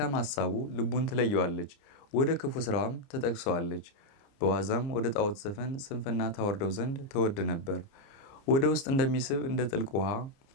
ሐሳቡ ልቡን ትለየዋለች፣ ወደ ክፉ ስራዋም ትጠቅሰዋለች። በዋዛም ወደ ጣዖት ዘፈን ስንፍና ታወርደው ዘንድ ተወድ ነበር። ወደ ውስጥ እንደሚስብ እንደ ጥልቅ ውሃ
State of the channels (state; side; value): late; right; 29 ms